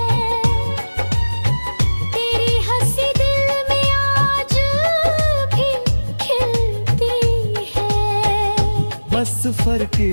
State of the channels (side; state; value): both; inverted; correlation -1.00